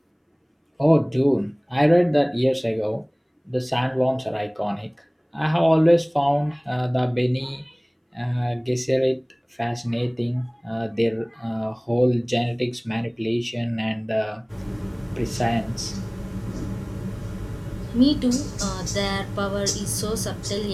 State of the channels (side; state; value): both; identical; correlation 1.00